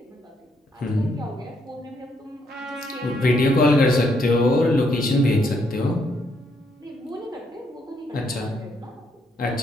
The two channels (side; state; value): both; normal; correlation 0.74